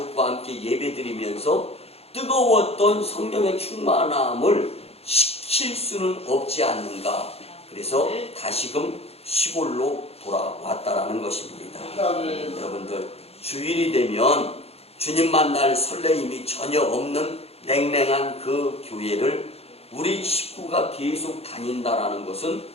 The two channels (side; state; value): right; late; 0.29 ms